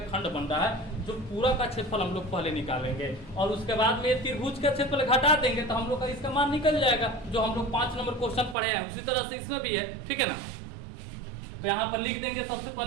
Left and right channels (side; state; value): left; drops out; at 8.6 s